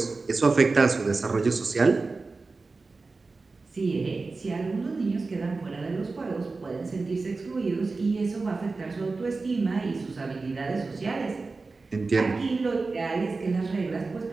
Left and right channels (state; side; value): quieter; left; 3.9 dB